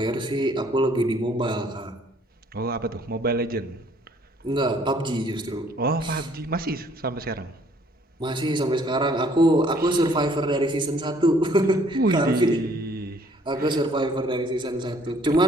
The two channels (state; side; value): normal; both; correlation 0.61